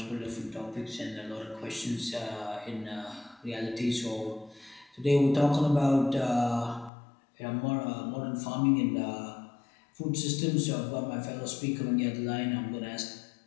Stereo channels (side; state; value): right; drops out; at 6.9 s